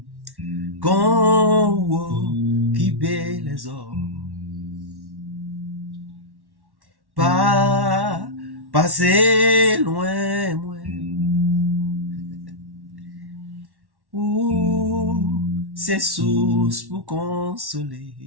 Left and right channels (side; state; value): left; late; 1.1 ms